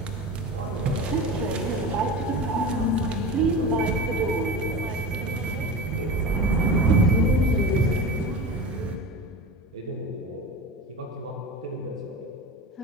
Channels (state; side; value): normal; both; correlation 0.29